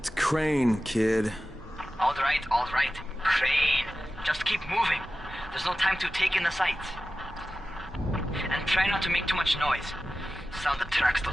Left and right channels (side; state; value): both; normal; correlation 0.94